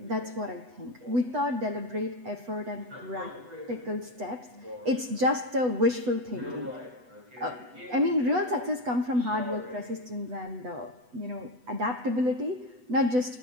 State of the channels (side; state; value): left; late; 8.1 ms